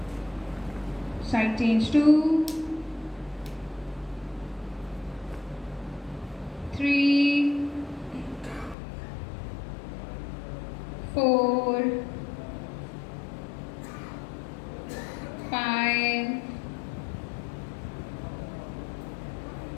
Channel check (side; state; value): right; drops out; at 8.8 s